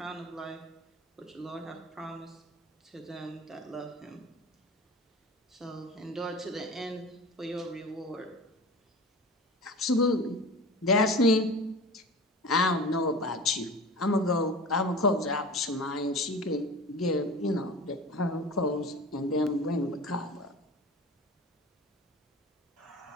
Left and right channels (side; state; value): both; normal; correlation 0.35